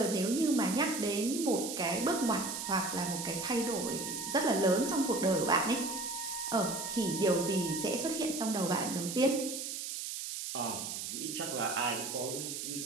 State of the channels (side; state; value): right; noise; hiss, 5 dB below the sound